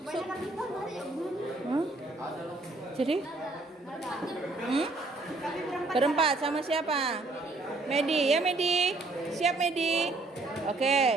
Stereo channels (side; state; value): left; quieter; 3.2 dB